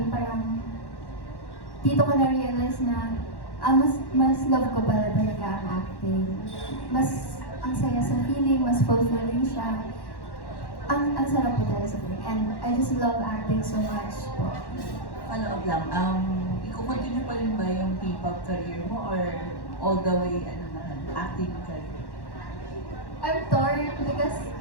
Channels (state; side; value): late; right; 1.1 ms